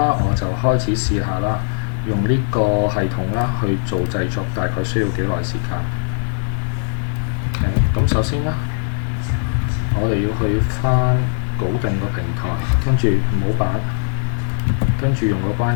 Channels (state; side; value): silent; right; digital silence